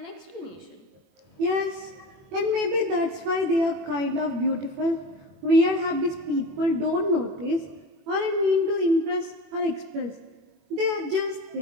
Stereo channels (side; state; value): left; late; 21 ms